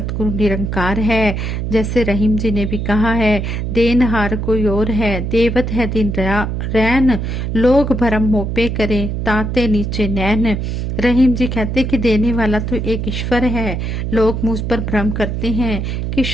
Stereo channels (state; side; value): noise; right; hum, 2 dB below the sound